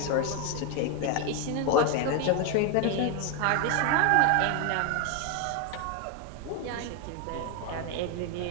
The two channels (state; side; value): different; both; correlation 0.01